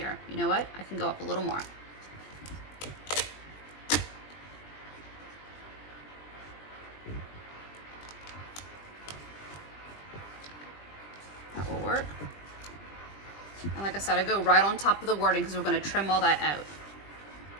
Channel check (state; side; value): late; right; 20 ms